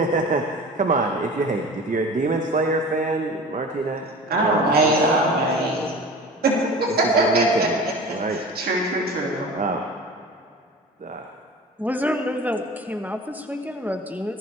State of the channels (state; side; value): normal; both; correlation 0.37